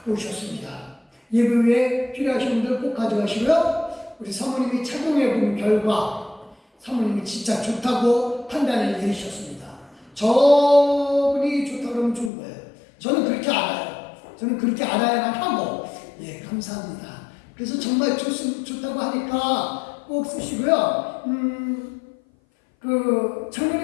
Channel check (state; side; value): drops out; right; at 12.3 s